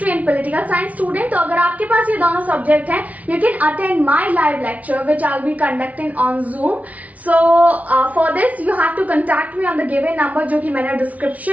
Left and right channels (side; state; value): left; late; 0.070 ms